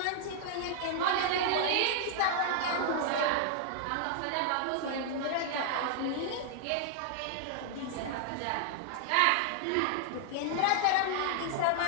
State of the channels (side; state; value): both; different; correlation 0.00